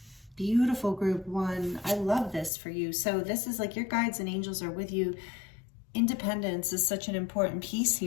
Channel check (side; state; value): right; drops out; at 2.5 s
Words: Beautiful group one. I love this for you. So this is like your guides and angels are with you. Independence is such an important piece